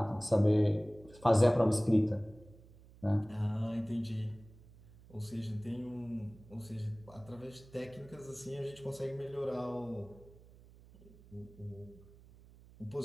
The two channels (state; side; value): noise; right; hum, 23 dB below the sound